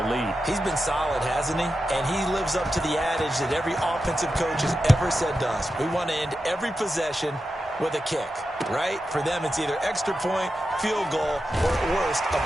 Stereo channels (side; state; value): both; normal; correlation 0.90